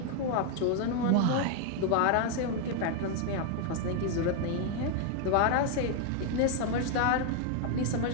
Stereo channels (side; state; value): both; different; correlation 0.01